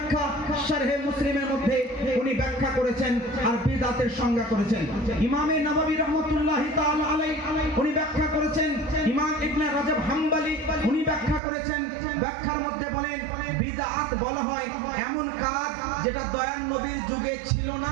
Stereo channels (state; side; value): drops out; left; at 11.4 s